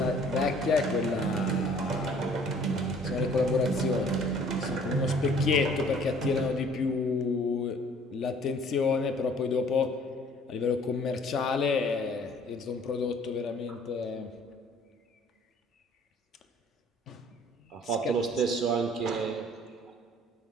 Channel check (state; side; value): normal; both; correlation 0.55